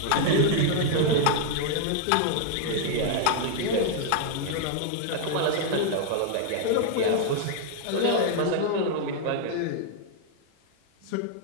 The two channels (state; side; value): different; both; correlation -0.01